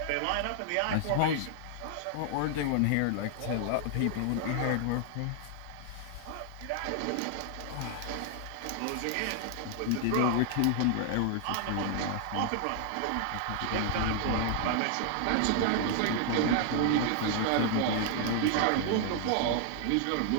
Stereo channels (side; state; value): both; different; correlation 0.00